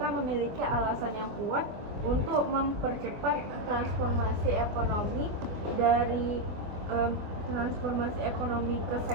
memiliki alasan yang kuat untuk mempercepat transformasi ekonomi dari transformasi ekonomi ke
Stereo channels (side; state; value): left; late; 24 ms